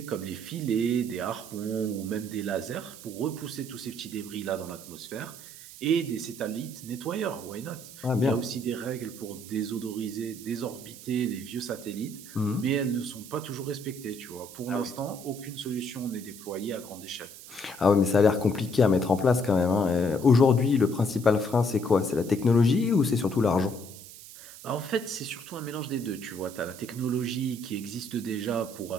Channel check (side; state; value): right; noise; hiss, 16 dB below the sound